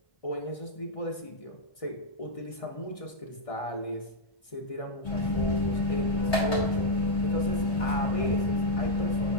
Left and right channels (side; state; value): right; late; 1.6 ms